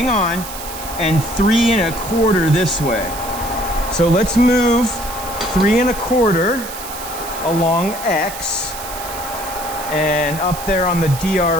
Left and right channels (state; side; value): noise; right; hiss, 11 dB below the sound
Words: on, and 3 1/4 this way. So let's move 3 1/4 along X, and up there on the